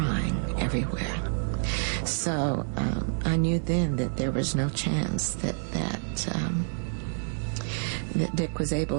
everywhere. So I knew then that there was no chance that Dick was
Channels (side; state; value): left; silent; 59 dB below the other